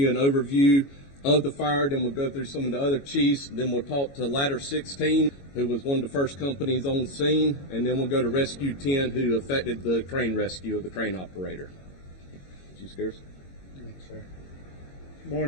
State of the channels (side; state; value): right; late; 22 ms